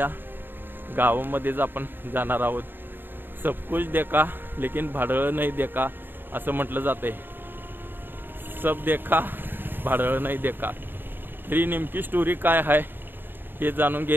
गावामध्येच आपण जाणार आहोत. सब कुछ देखा लेकिन भाडळ नाही देखा असं म्हटलं जातंय. सब देखा भाडळ नाही देखा. तरी नेमकी स्टोरी काय आहे हे जाणून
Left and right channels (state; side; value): late; left; 0.096 ms